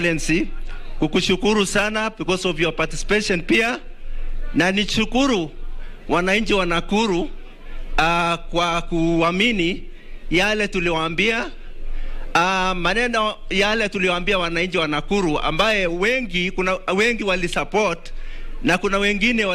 kukushukuru sana because of your participation pia, na nishukuru wananchi wa Nakuru kwa kuamini yale tuliwaambia, maneno yale tuliwaambia wananchi wa Nakuru, ambaye kuna wengi wali support na kuna wengine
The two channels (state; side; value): identical; both; correlation 1.00